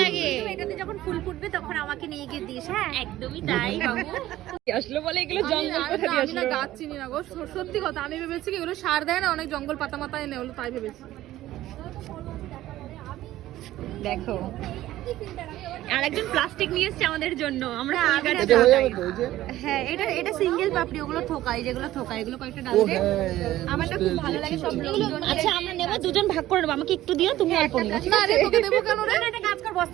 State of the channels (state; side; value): quieter; left; 14.8 dB